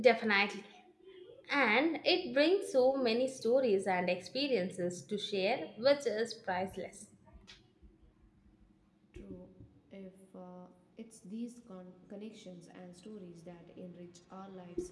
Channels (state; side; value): identical; both; correlation 1.00